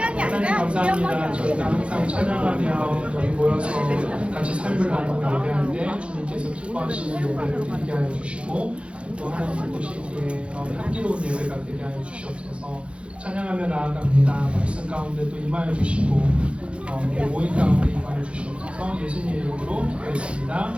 하나님 감사합니다. 저희가 항상 찬양하며 저희 모여서 같이 삶을 나누고 예배하는데 주님께서 기뻐하시는 예배를 드리게 하여 주시고 또 하나님 보시기에 향기로운 예배가 되게 하여 주시옵소서. 찬양하며 나아갑니다. 말씀 가운데 또 임하여 주시고 우리 모임 가운데 임하여 주시옵소서. 예수님의 이름으로 기도했습니다.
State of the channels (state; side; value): late; left; 0.059 ms